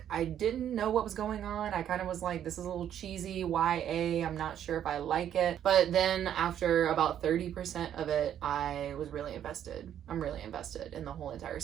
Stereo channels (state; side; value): quieter; left; 10.1 dB